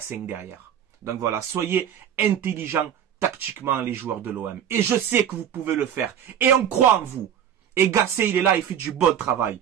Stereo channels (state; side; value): quieter; left; 9.4 dB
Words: 5 derrière. Donc voilà, soyez intelligents tactiquement les joueurs de l'OM. Et je sais que vous pouvez le faire. Et on croit en vous. Et Gassé, il est là, il fait du bon travail.